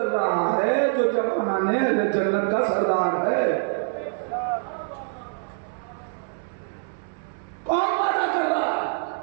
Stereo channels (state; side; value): silent; left; 62 dB below the other